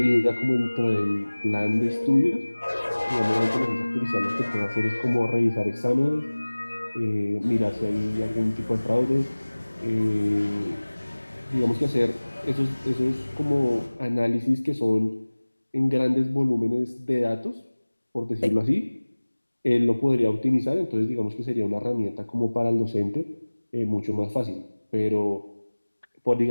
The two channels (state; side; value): inverted; both; correlation -1.00